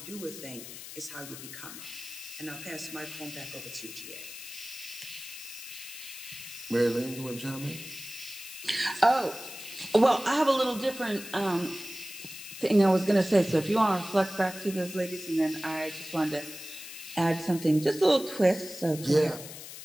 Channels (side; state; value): left; noise; hiss, 12 dB below the sound